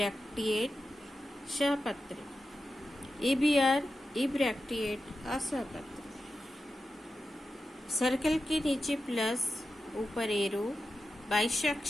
सहपत्र, EBR इब्रैक्टिएट असहपत्र। सर्कल के नीचे प्लस, ऊपर एरो,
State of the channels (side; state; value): both; normal; correlation 0.91